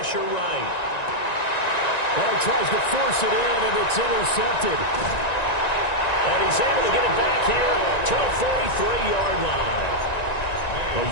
right. Well, he tries to force it in, and it's intercepted. And he's able to get it back here to the 43-yard line.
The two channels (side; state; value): right; late; 1.9 ms